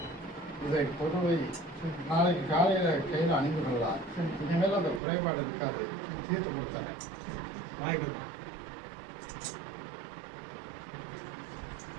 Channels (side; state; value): left; drops out; at 5.0 s